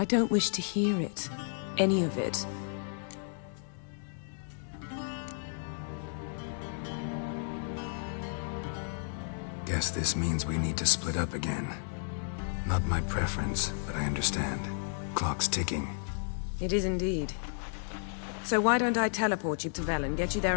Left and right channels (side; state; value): right; silent; digital silence